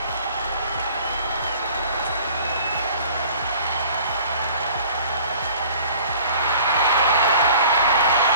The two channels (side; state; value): both; inverted; correlation -0.49